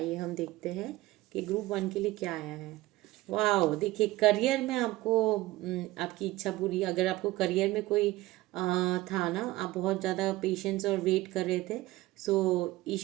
हम देखते हैं कि ग्रुप 1 के लिए क्या आया है। वाह, देखिए करियर में आपको आपकी इच्छा पूरी, अगर आपको करियर में कोई था ना, आप बहुत ज़्यादा पेशेंस और वेट कर रहे थे, सो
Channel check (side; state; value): left; quieter; 18.3 dB